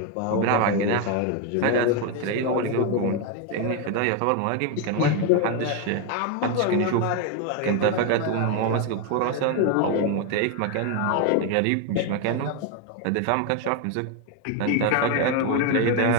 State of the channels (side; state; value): both; different; correlation 0.02